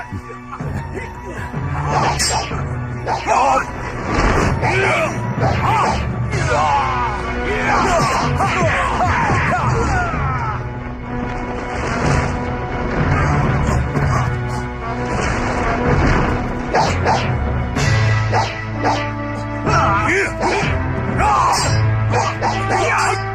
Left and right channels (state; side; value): identical; both; correlation 1.00